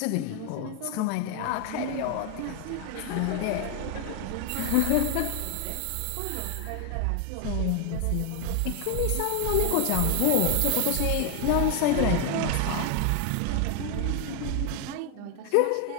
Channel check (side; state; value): both; different; correlation 0.00